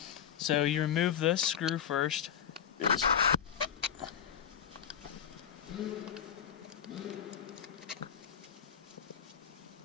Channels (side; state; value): right; quieter; 8.6 dB